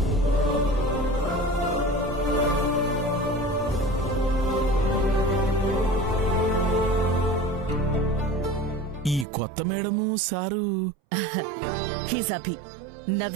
ఈ కొత్త madam sir he's Abhi,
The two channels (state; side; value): drops out; left; at 9.2 s